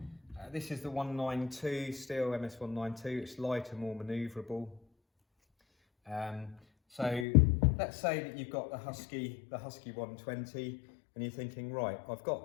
This is the 192 Stihl MS 192. It's lighter, more manoeuvrable. So let's say that you've got the Husky 120, and you're thinking, right, I've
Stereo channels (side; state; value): right; drops out; at 7.2 s